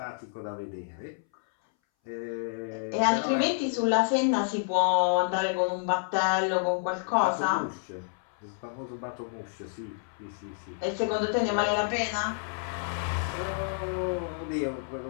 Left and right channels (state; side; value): silent; right; 58 dB below the other